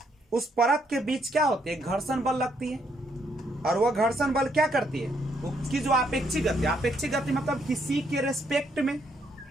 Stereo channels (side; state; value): both; normal; correlation 0.73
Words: उस परत के बीच क्या होती है? घर्षण बल लगती है। और वह घर्षण बल क्या करती है? उसकी जो आपेक्षिक गति, आपेक्षिक गति मतलब किसी के रेस्पेक्ट में,